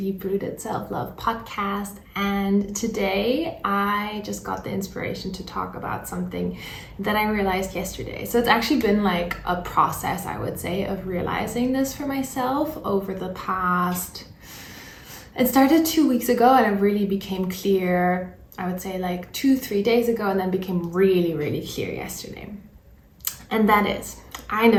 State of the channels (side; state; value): both; identical; correlation 1.00